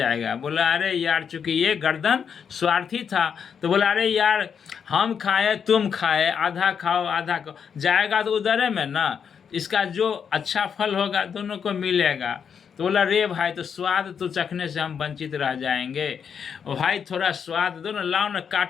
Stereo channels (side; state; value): right; quieter; 7.1 dB